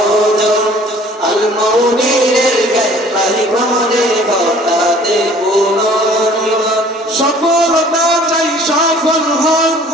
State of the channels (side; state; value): both; normal; correlation 0.52